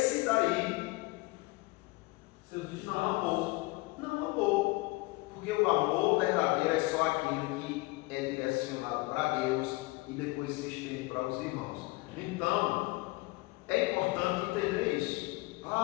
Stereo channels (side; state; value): right; quieter; 23.0 dB